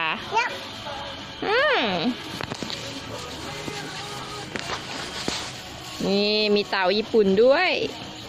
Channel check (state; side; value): identical; both; correlation 1.00